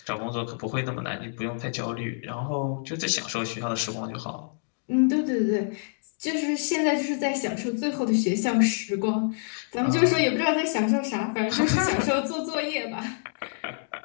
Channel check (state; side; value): silent; right; digital silence